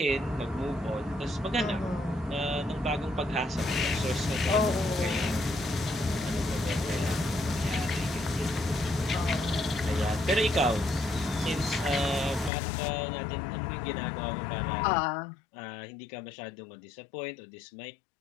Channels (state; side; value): drops out; right; at 12.5 s